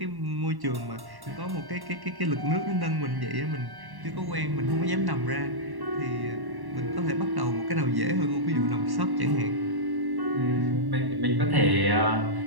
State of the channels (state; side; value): late; left; 1.1 ms